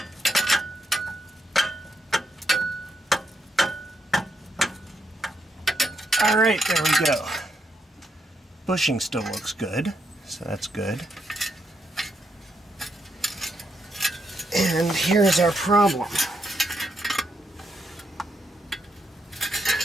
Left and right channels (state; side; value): normal; both; correlation 0.80